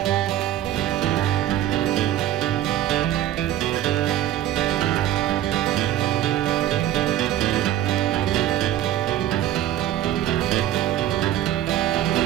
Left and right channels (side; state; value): left; quieter; 12.2 dB